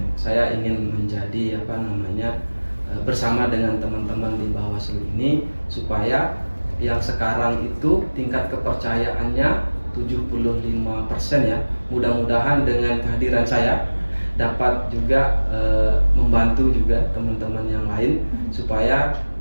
Saya ingin menjadi bersama dengan teman-teman di Bawaslu ini supaya yang sekarang itu tingkat kepercayaannya 75% ya. Mudah-mudahan dengan kehadiran saya dapat juga membantu juga teman-teman yang lain supaya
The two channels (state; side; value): inverted; both; correlation -1.00